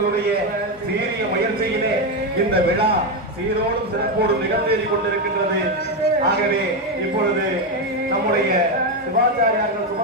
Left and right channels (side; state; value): both; normal; correlation 0.08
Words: சீரிய முயற்சியிலே இந்த விழா சீரோடும் சிறப்போடும் நிகழ்ந்தேறி கொண்டிருக்கின்றது. ஆகவே இப்பொழுது நம்முடைய சிவாச்சாரியார்கள்